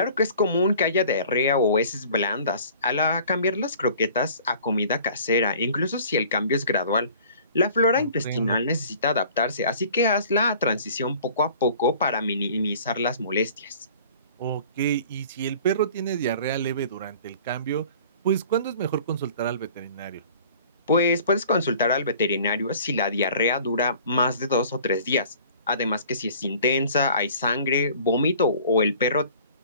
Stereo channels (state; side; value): inverted; both; correlation -0.49